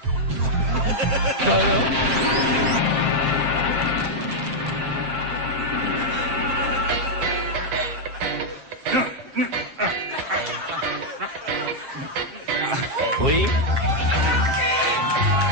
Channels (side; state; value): left; late; 7.5 ms